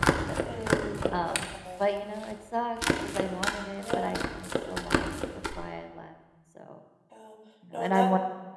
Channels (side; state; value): both; identical; correlation 1.00